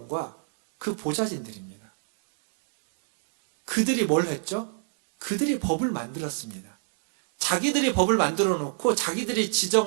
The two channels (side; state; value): left; silent; digital silence